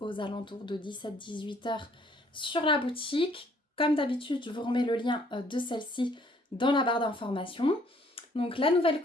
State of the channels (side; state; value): both; normal; correlation 0.62